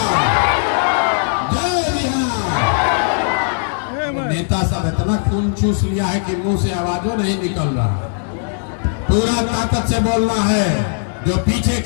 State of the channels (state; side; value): silent; right; digital silence